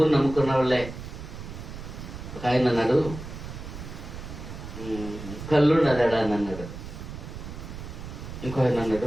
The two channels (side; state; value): right; noise; rumble, 10 dB below the sound